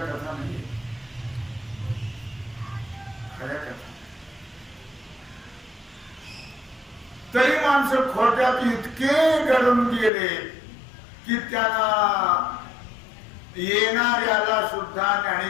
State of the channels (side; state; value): right; drops out; at 10.1 s